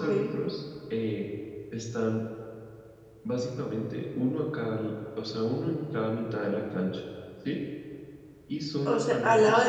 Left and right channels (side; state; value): both; identical; correlation 1.00